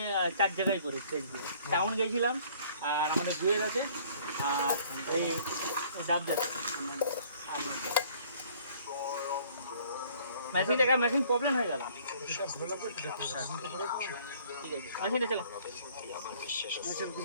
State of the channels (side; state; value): both; inverted; correlation -0.57